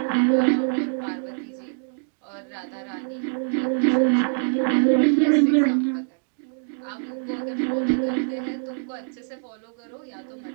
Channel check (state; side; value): silent; left; digital silence